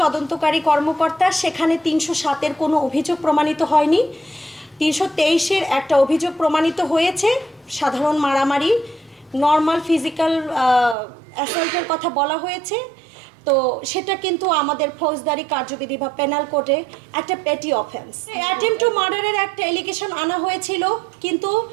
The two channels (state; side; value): drops out; left; at 11.0 s